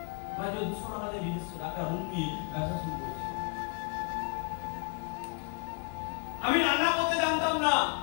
আমি 200 টাকা দিয়ে বিজনেস একটা রুম নিয়ে ব্যবসা শুরু করেছি। আমি রান্না করতে জানতাম না,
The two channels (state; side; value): quieter; right; 36.6 dB